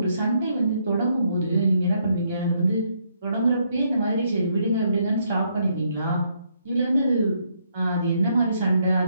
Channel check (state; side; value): inverted; both; correlation -0.73